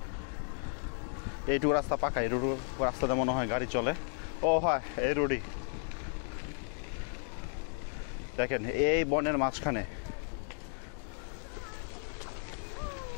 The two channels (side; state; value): right; silent; 55 dB below the other